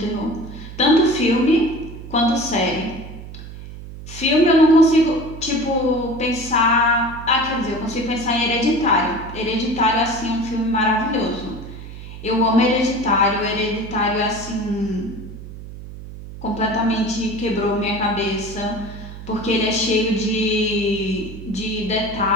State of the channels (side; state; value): right; noise; hum, 13 dB below the sound